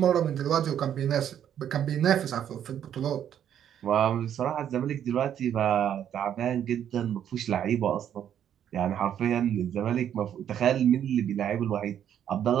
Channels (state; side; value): quieter; left; 9.8 dB